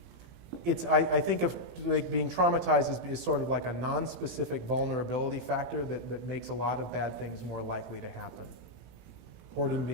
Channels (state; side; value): late; left; 18 ms